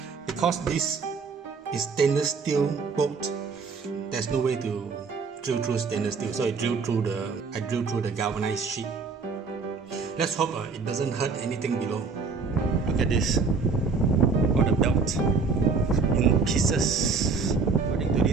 Because this is stainless steel bolt, there's no way to drill through stainless steel, so I drill through the galvanized sheet. Let's hope it doesn't hurt anything below. Look at this, got the belt in pieces. According to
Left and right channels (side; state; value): left; quieter; 4.9 dB